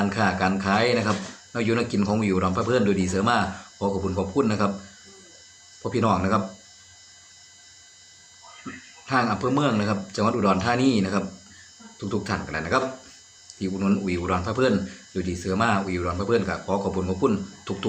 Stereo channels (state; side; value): identical; both; correlation 1.00